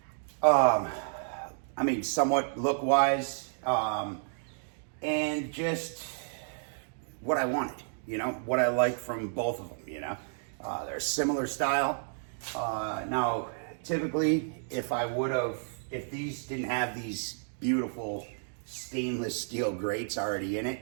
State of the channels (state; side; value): silent; left; digital silence